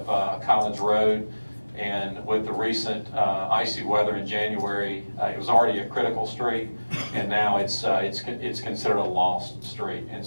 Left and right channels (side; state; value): both; inverted; correlation -1.00